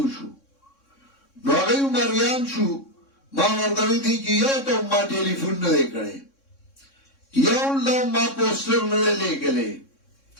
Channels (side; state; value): right; late; 3.6 ms